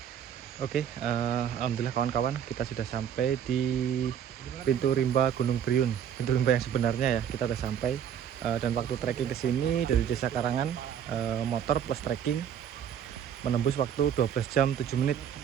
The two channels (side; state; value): left; quieter; 9.0 dB